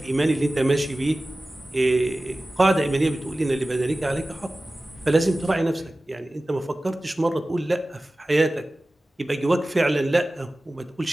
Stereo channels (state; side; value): normal; both; correlation 0.96